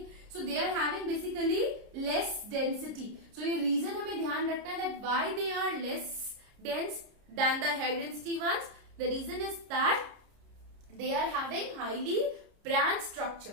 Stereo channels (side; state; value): left; late; 30 ms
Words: So they are having basically less density. So ये reason हमें ध्यान रखना है that why they are less dense than the high density ones. The reason is that they are having highly branched